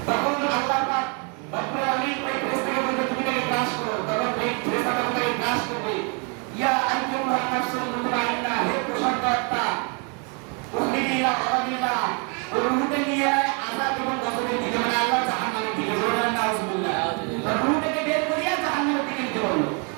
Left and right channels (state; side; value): quieter; left; 35.7 dB